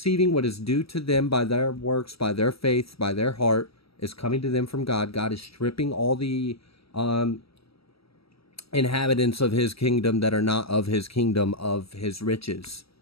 what is due to them by their works, by their faith, by their heart, is coming to them from God. God is stripping all the inhabitants of his kingdom that are not of his kingdom of his riches.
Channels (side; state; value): right; late; 0.76 ms